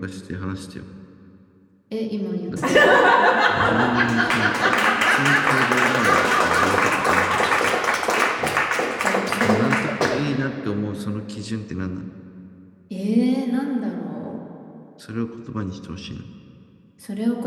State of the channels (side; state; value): both; identical; correlation 1.00